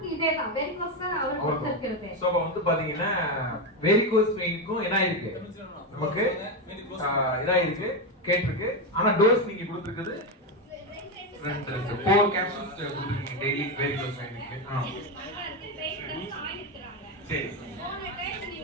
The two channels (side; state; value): both; normal; correlation 0.10